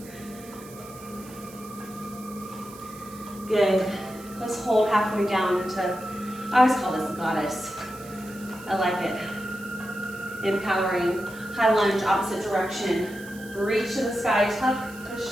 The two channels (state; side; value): noise; right; hiss, 19 dB below the sound